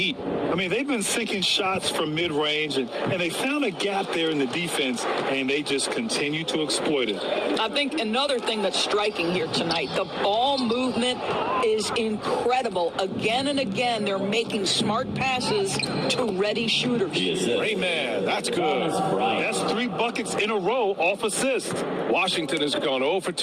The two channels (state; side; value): identical; both; correlation 1.00